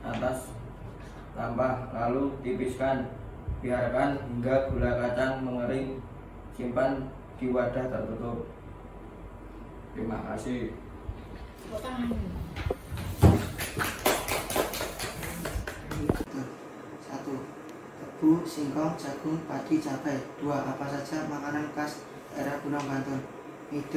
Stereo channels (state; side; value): identical; both; correlation 1.00